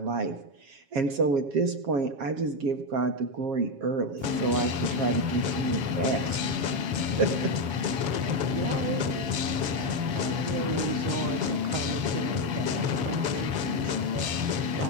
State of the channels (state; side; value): late; left; 7.2 ms